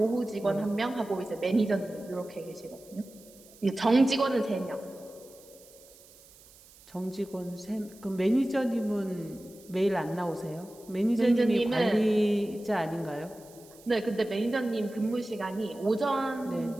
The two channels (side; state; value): right; noise; hiss, 24 dB below the sound